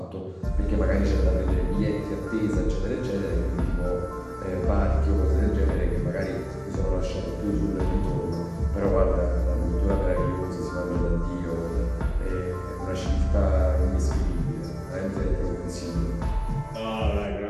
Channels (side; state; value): both; identical; correlation 1.00